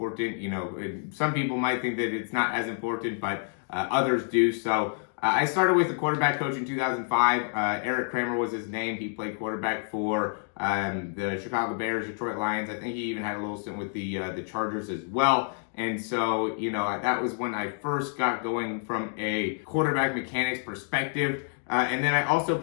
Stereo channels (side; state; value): right; silent; 59 dB below the other